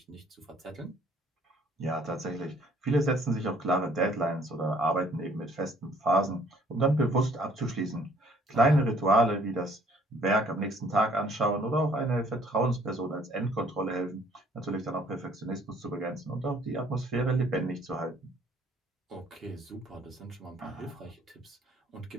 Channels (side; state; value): both; normal; correlation 0.60